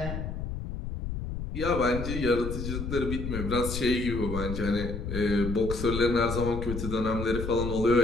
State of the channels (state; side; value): noise; left; rumble, 5 dB below the sound